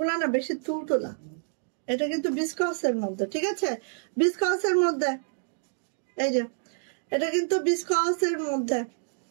না বেশি তুলতুলা, এটা কিন্তু বিস্কসের মধ্যে, ঠিক আছে বিস্কসের মধ্যে। এই যে এটা কিন্তু বিস্কসের মধ্যে,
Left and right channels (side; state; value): left; silent; digital silence